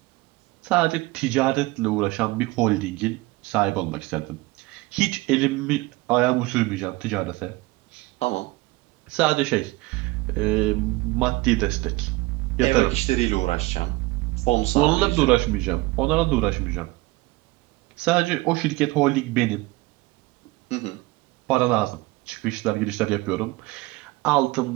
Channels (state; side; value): quieter; left; 21.7 dB